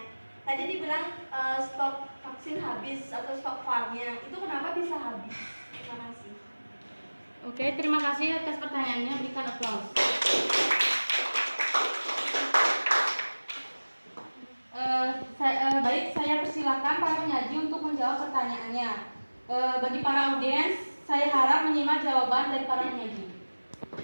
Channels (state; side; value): inverted; both; correlation -1.00